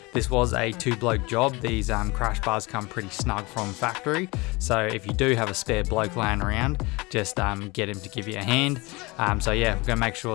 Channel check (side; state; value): right; quieter; 24.4 dB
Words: This was a two-bloke job. These crash bars come pretty snug from factory, so if you do have a spare bloke laying around, just get him to give you a hand. So yeah, we're going to make